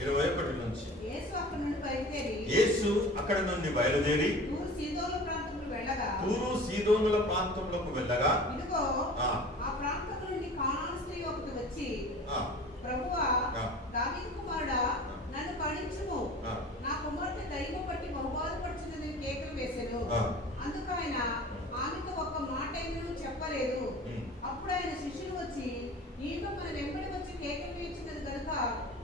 21 నుంచి. యేసు అక్కడి నుండి బయలుదేరి తూరు సీదోనుల ప్రాంతంలోకి వెళ్ళగా ఇదిగో ఆ ప్రాంతం నుండి కానాను స్త్రీ ఒకటి వచ్చి, ప్రభువా, దావీదు కుమారుడా, నన్ను కరుణించుము, నా కుమార్తె దయ్యము పట్టి బహుబాధపడుచున్నది కేకలు వేసెను. అందుకు ఆయన ఆమెతో ఒక్క మాట ఏమీ చెప్పలేదు. అప్పుడు ఆయన శిష్యులు వచ్చి, ఈమె మన వెంబడి వచ్చి కేకలు వేయించినది కనుక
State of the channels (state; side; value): normal; both; correlation 0.40